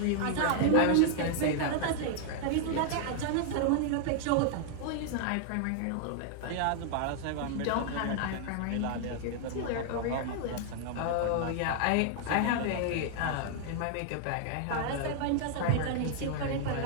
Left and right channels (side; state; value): both; different; correlation -0.01